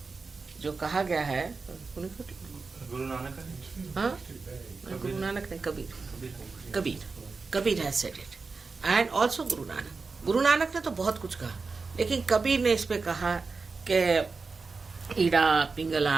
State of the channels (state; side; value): quieter; left; 4.4 dB